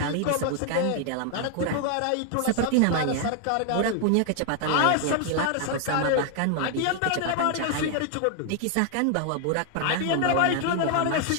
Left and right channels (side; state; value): both; different; correlation 0.00